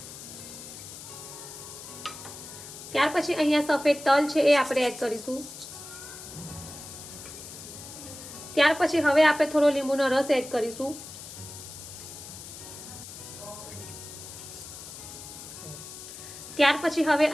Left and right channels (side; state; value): left; noise; hiss, 13 dB below the sound